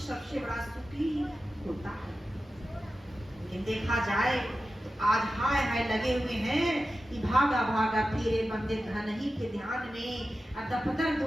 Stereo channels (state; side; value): normal; both; correlation 0.93